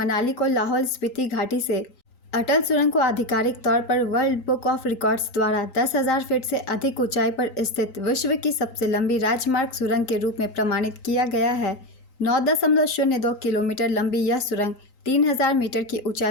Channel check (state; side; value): late; right; 3.9 ms